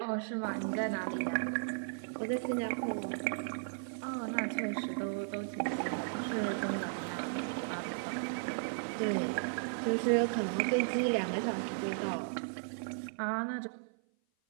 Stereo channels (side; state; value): left; silent; 54 dB below the other